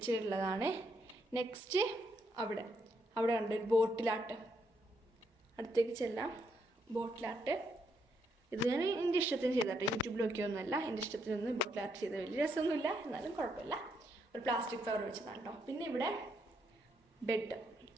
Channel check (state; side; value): normal; both; correlation 0.76